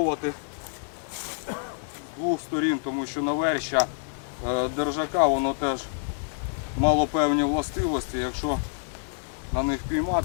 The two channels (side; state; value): right; silent; 60 dB below the other